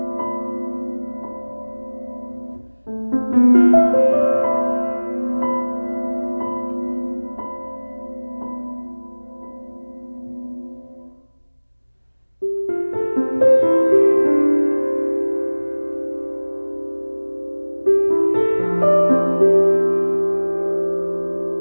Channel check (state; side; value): inverted; both; correlation -1.00